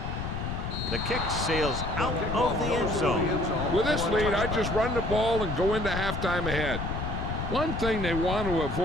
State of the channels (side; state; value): left; noise; rumble, 4 dB below the sound